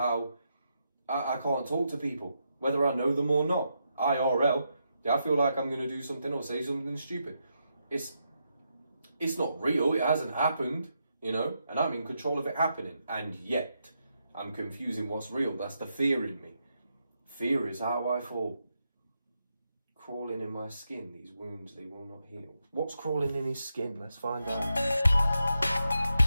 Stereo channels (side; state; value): both; inverted; correlation -0.83